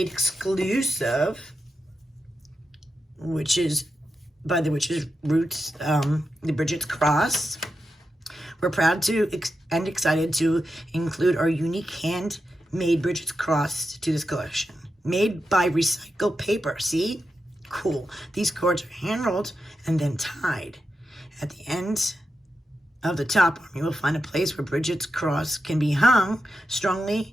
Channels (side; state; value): both; normal; correlation 0.88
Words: exclusive, which is by the Witch's Roots, the Bridget's Cross. We're proud to and excited to include our unique handmade Bridget's Cross to this collection. Made by recycled paper. See? Cool. These cords are hand-rolled and then tied. At the end of the top arm, you will find a place where Bridget's Cross can be hung, strongly